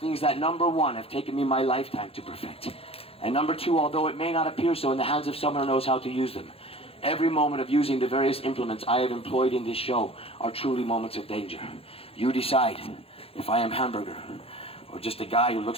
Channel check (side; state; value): right; late; 0.28 ms